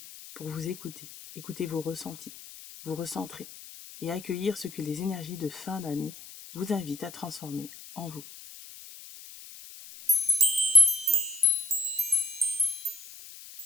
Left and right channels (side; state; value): left; noise; hiss, 16 dB below the sound